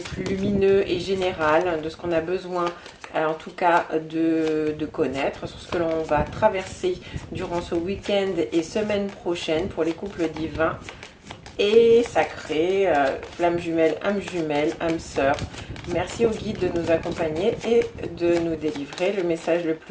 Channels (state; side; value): identical; both; correlation 1.00